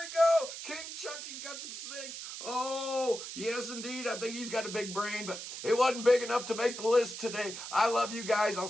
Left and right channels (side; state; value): right; noise; hiss, 9 dB below the sound